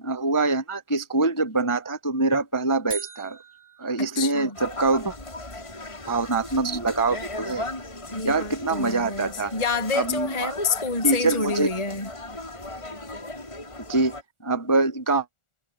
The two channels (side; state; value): right; late; 1.4 ms